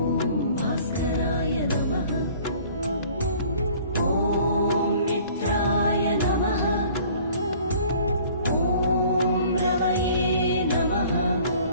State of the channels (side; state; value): both; inverted; correlation -0.51